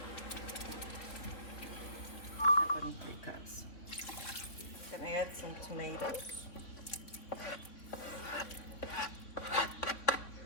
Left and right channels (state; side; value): late; right; 3.5 ms